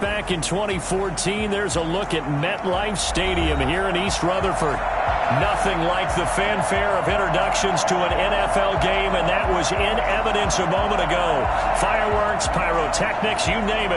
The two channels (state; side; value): identical; both; correlation 1.00